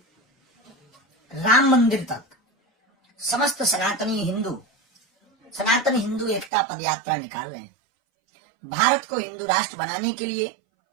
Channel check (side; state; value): left; drops out; at 6.5 s